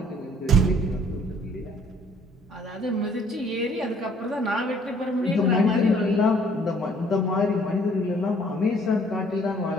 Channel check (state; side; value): normal; both; correlation 0.59